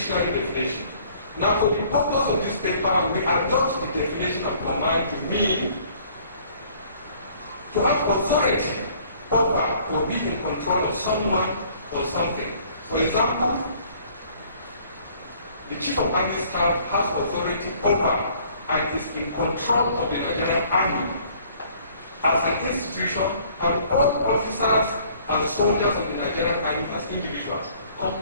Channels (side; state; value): both; inverted; correlation -0.57